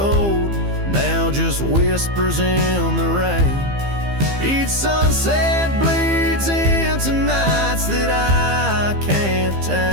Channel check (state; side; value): late; left; 15 ms